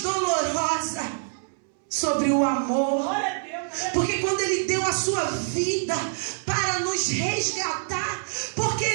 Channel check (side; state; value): left; silent; 61 dB below the other